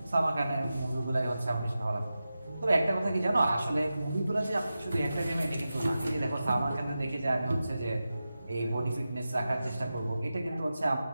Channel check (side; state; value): both; inverted; correlation -0.93